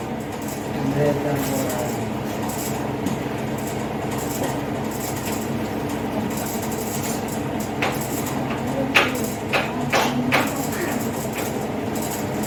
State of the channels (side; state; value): both; identical; correlation 1.00